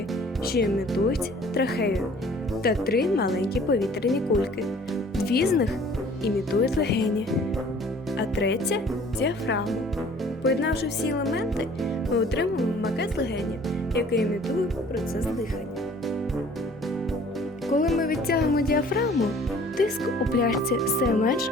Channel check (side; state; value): both; normal; correlation 0.52